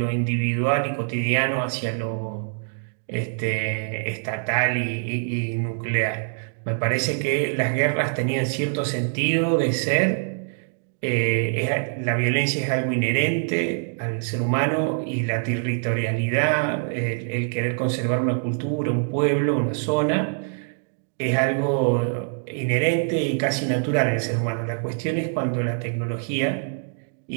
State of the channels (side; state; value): left; silent; digital silence